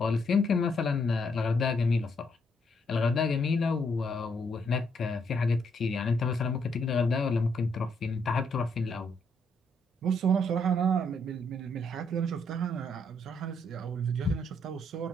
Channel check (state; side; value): normal; both; correlation 0.73